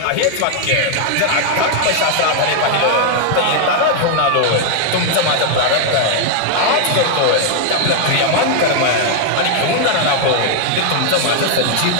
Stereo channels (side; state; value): both; different; correlation 0.00